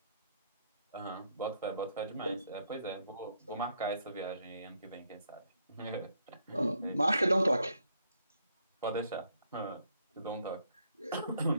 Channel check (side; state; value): both; inverted; correlation -0.71